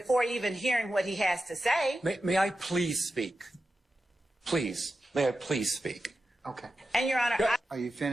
even hearing what he has to say. May I please speak? Please. May I please speak? Okay. And, Your Honor, Are you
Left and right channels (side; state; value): both; normal; correlation 0.91